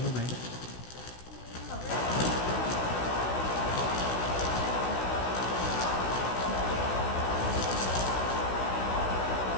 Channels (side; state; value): right; late; 16 ms